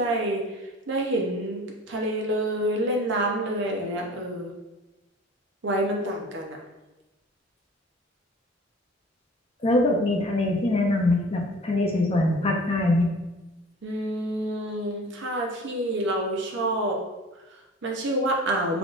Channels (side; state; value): both; normal; correlation 0.43